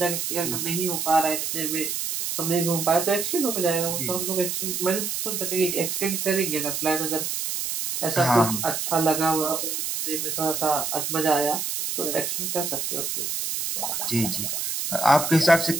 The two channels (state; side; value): noise; right; hiss, 2 dB below the sound